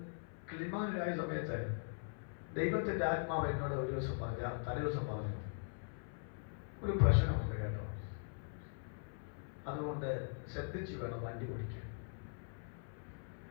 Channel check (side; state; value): right; silent; 50 dB below the other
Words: കിളിമാനിലായ സമയത്ത് ദൈവത്തിന്റെ ആത്മാവ് എന്നോട് ഒരു ദിവസം പറഞ്ഞ തലേദിവസം പറഞ്ഞു, ഒരു പ്രശ്നമുണ്ട് കേട്ടോ, അതുകൊണ്ട് ശ്രദ്ധിച്ചു വേണം വണ്ടി ഓടിക്കാൻ.